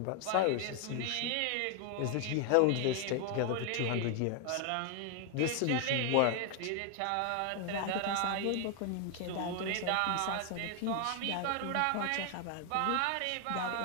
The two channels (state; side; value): different; both; correlation 0.01